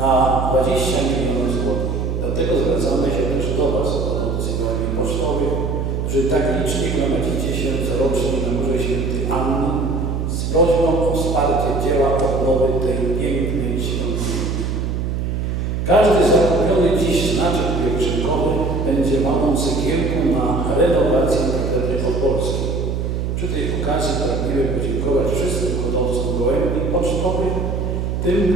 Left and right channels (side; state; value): right; noise; hum, 1 dB below the sound